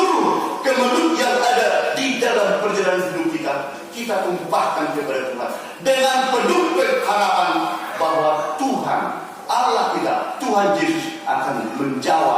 kemelut yang ada di dalam perjalanan hidup kita tumpahkan kepada Tuhan dengan penuh harapan bahwa Tuhan Allah kita, Tuhan Yesus akan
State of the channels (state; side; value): identical; both; correlation 1.00